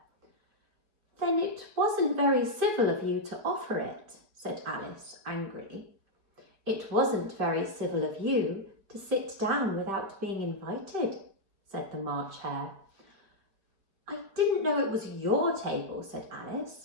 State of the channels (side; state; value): left; late; 5.0 ms